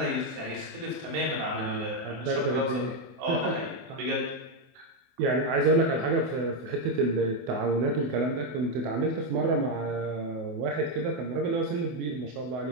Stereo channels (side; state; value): left; late; 24 ms